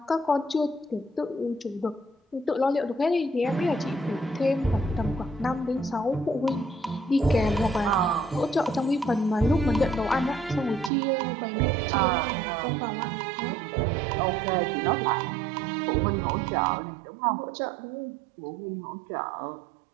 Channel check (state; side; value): drops out; left; at 10.9 s